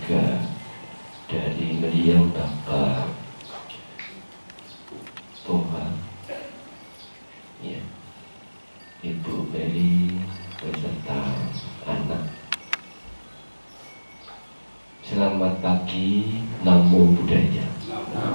dari beliau Bapak Toha, ya, Ibu Mary beserta anak. Selamat pagi, Namo Buddhaya.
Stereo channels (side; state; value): both; inverted; correlation -1.00